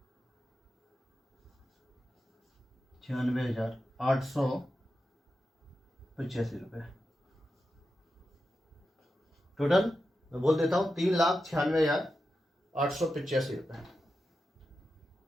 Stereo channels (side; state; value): both; normal; correlation 0.90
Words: रुपये। टोटल मैं बोल देता हूँ 3,96,885 रुपये।